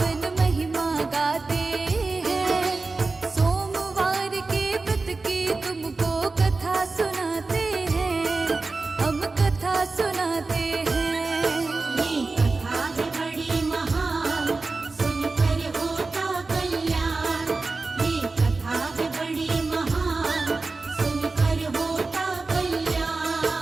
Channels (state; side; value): quieter; left; 3.7 dB